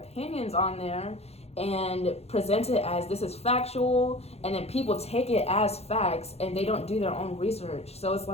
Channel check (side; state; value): right; late; 0.30 ms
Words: on there and present it as this is factual, and then people take it as facts and they don't do their own research. So it's